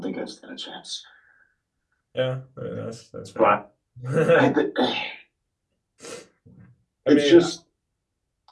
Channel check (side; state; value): both; identical; correlation 1.00